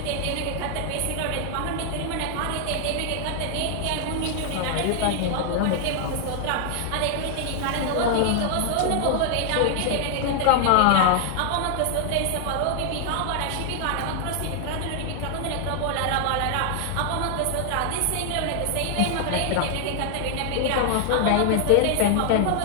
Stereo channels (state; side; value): different; both; correlation 0.00